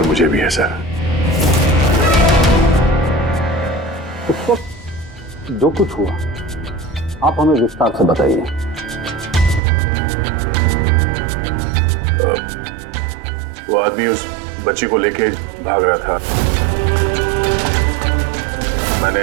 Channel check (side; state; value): left; drops out; at 9.6 s